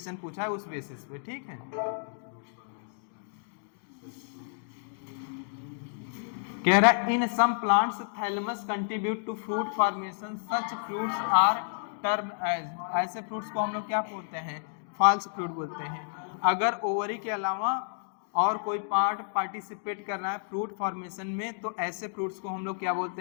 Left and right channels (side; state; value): right; silent; digital silence